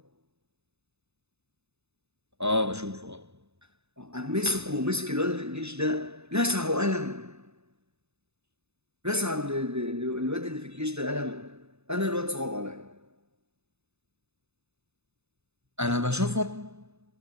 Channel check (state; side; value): late; left; 0.80 ms